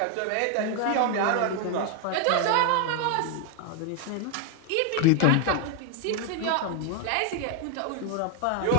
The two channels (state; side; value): different; both; correlation 0.01